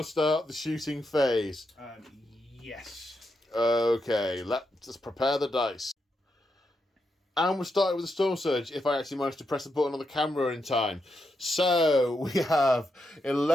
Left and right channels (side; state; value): both; normal; correlation 0.84